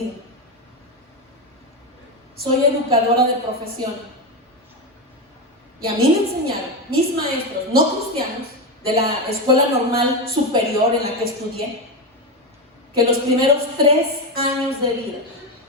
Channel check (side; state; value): both; normal; correlation 0.13